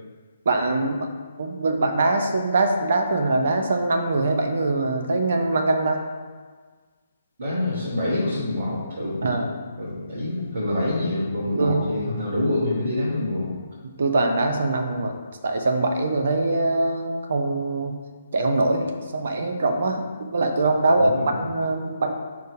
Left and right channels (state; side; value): inverted; both; correlation -0.80